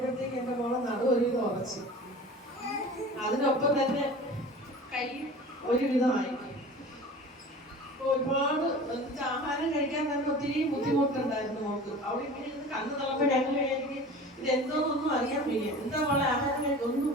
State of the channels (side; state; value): both; normal; correlation 0.39